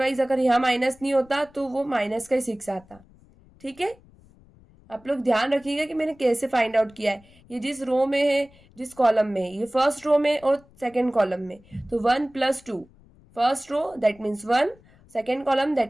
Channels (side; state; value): left; noise; rumble, 27 dB below the sound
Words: अगर यहाँ माइनस नहीं होता तो वो माइनस का ही 6 आता। ठीक है, आप लोग ध्यान रखिएगा कि मैंने कैसे फाइंड आउट किया है। ये जिस रो में है जिस कॉलम में है, ये फर्स्ट रो में और सेकेंड कॉलम में, तो 1 + 2 first row that means 1, second column